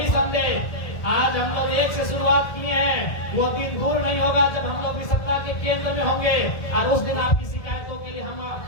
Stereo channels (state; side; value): late; right; 1.2 ms